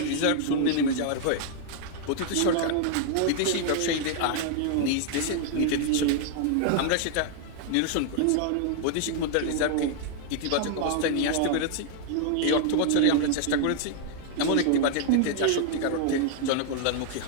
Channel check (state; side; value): different; both; correlation 0.00